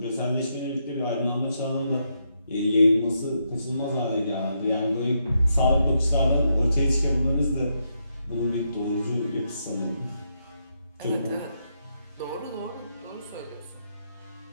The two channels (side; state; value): both; inverted; correlation -0.80